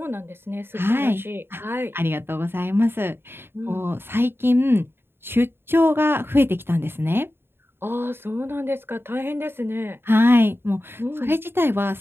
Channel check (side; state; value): left; late; 0.11 ms